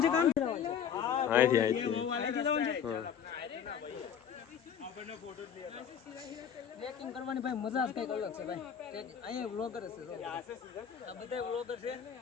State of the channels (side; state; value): right; quieter; 8.1 dB